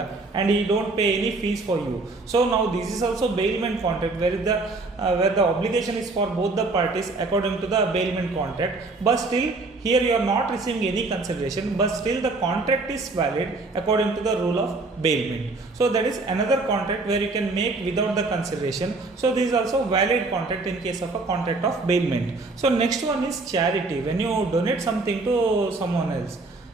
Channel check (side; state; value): left; quieter; 3.4 dB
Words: and he don't pay any fees for you. So ನಾವು this is also bailment contract where the obligation is for both the parties according to the bailment contract, but still here you are not receiving any consideration, but still the contract is valid according to the rule of bailment. So that is another contract where you can make without the consideration. So this is also valid contract in case of a contract of bailment. So next one is charity, when you donate something to someone else.